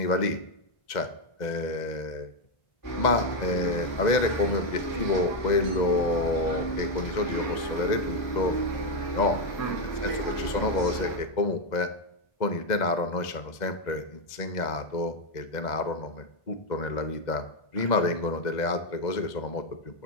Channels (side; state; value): right; late; 2.0 ms